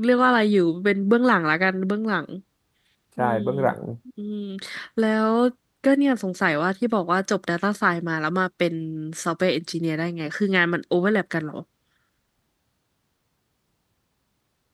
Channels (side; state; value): both; identical; correlation 1.00